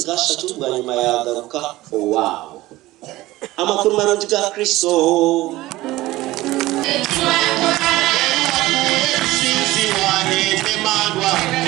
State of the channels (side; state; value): left; quieter; 17.7 dB